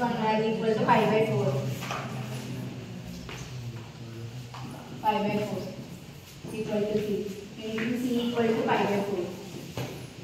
value equal to 5/4 equal to c. Anything c equal to 5/4.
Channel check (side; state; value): both; identical; correlation 1.00